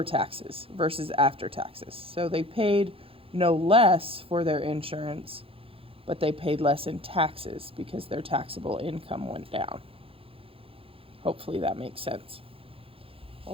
taxes versus after taxes. So they paid no less for their insurance, but they paid less in taxes because their taxable income went down. Hopefully that makes sense.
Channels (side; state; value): left; late; 0.27 ms